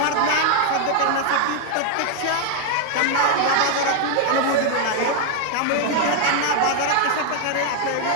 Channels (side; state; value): both; different; correlation 0.00